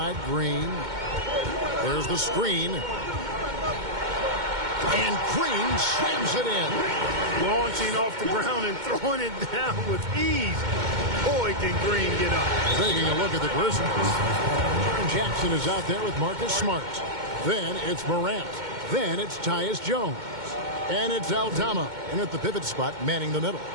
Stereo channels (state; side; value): late; left; 2.2 ms